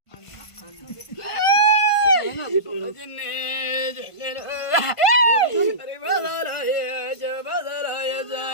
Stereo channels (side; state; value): right; late; 1.5 ms